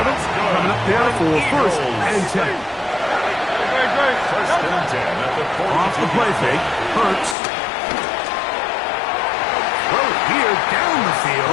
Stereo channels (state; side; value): drops out; right; at 7.4 s